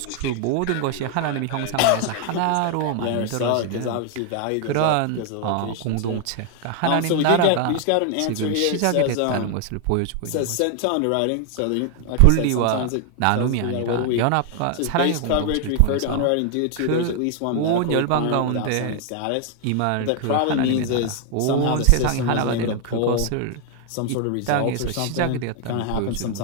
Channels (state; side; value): different; both; correlation 0.00